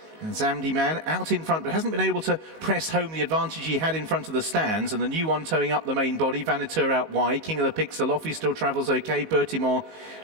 And Zamdi Man out in front, but hasn't been able to press home the advantage he had in front of the stands. And the new one towing up the main body, Vaniteux out wide. King of the Picts, Alofi still travels okay. Bertimont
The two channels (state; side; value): late; left; 19 ms